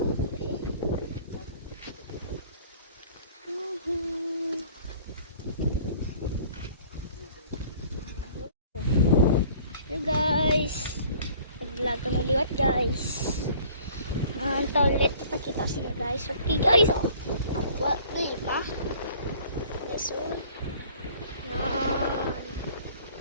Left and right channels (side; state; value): both; inverted; correlation -0.52